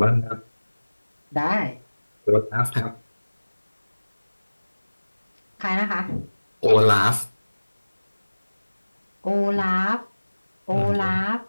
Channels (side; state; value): both; inverted; correlation -1.00